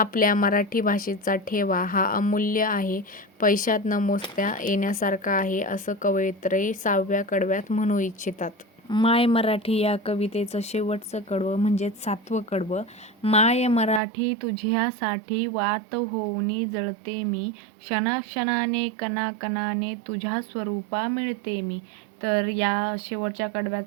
मराठी भाषेचा ठेवा हा अमूल्य आहे, पैशात न मोजता येण्यासारखा आहे, असं कवयित्री 6व्या कडव्यात म्हणू इच्छितात. माय मराठी या कवितेचं शेवटचं कडवं म्हणजेच 7वं कडवं. माय मराठी तुझ्यासाठी वात होऊनी जळते मी, क्षणाक्षणाने कणाकणाने तुझ्या स्वरूपा मिळते मी. तर या शेवटच्या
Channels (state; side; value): drops out; left; at 14.0 s